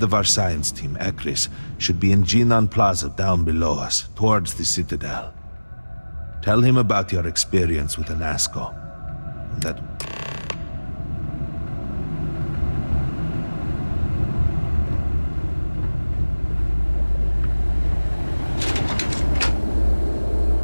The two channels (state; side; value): inverted; both; correlation -1.00